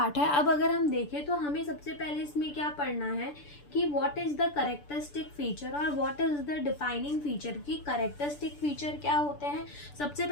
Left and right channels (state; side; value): late; right; 6.9 ms